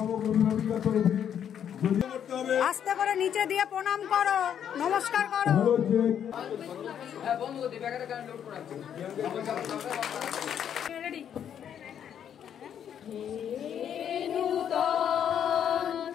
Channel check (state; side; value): quieter; right; 9.0 dB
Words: অভিভাবিকা তরফে। আস্তে করে নিচে দিয়ে প্রণাম করো, নমস্কার করো।